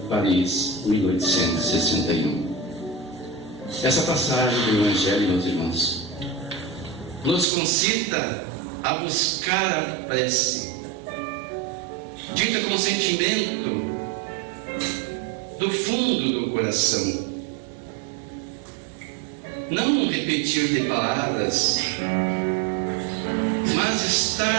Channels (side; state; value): left; drops out; at 7.5 s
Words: Paris, 1861. Essa passagem do Evangelho, meus irmãos, nos concita a buscar a prece, dita com sentimento do fundo do coração. Não repetir de palavras, mas